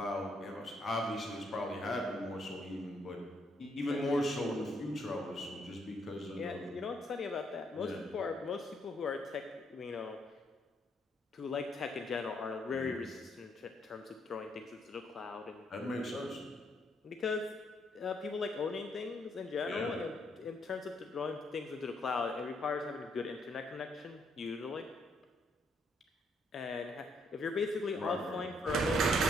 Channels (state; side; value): normal; both; correlation 0.72